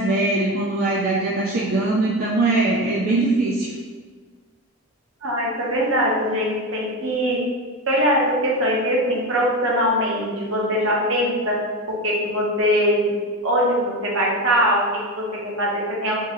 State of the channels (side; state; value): both; normal; correlation 0.19